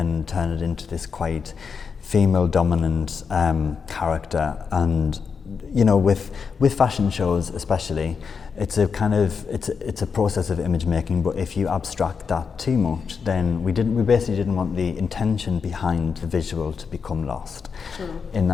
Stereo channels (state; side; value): quieter; right; 5.9 dB